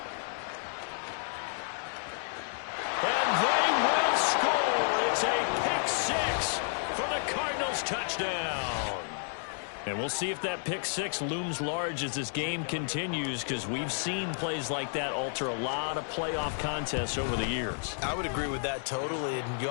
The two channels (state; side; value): silent; right; 57 dB below the other